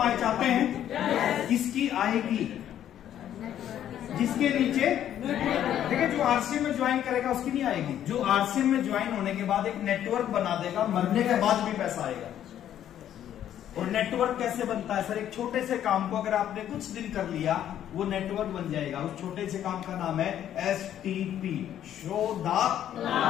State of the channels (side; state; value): right; quieter; 10.8 dB